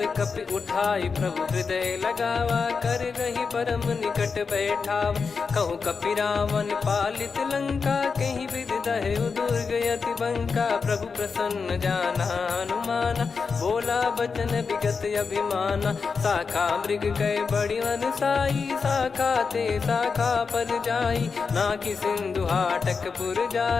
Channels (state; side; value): quieter; right; 5.2 dB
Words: कपि उठाई प्रभु हृदय लगावा, कर गही परम निकट बैठावा, कहूँ कपि रावण पालित लंका, कहीं विद दहु दुर्ग यति बंका, प्रभु प्रसन्न जाना हनुमाना, बोला बचन विगत अभिमाना, शाखा मृग कह बड़ी मनसाई, शाखा ते शाखा पर जाई, ना कि सिंधु हाटक पुर